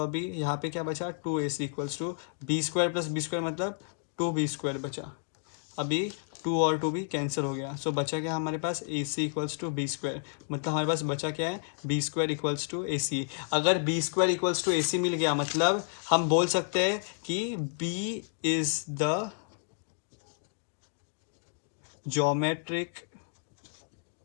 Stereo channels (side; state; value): right; silent; digital silence